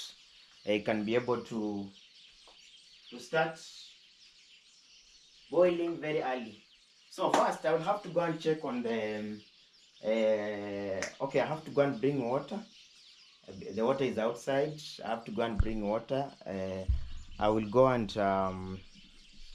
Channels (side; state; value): both; identical; correlation 1.00